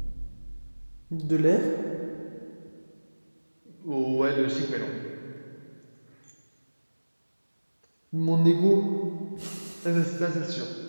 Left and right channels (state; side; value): inverted; both; correlation -1.00